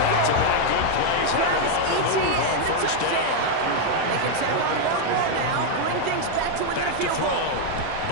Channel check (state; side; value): different; both; correlation 0.00